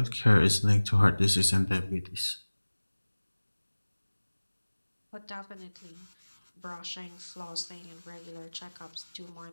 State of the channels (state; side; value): inverted; both; correlation -1.00